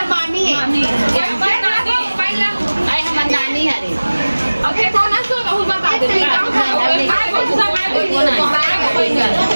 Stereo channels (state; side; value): inverted; both; correlation -1.00